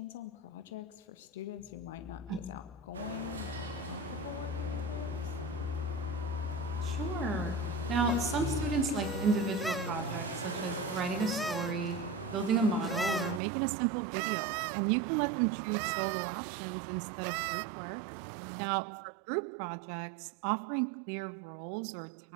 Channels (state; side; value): drops out; left; at 13.4 s